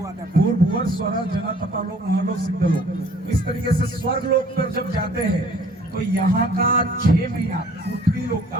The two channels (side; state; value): both; normal; correlation 0.55